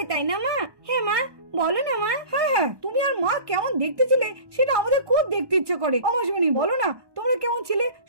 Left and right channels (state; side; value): late; left; 1.2 ms